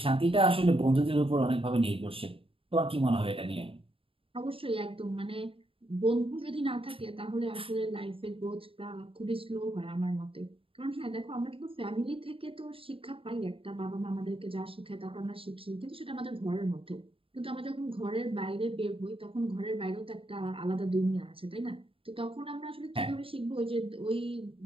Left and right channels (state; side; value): late; left; 0.26 ms